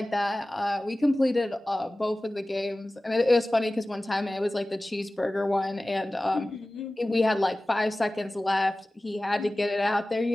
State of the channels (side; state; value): both; normal; correlation 0.97